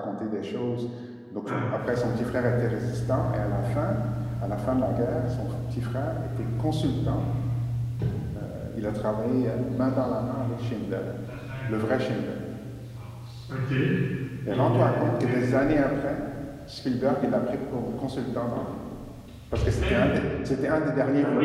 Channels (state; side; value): identical; both; correlation 1.00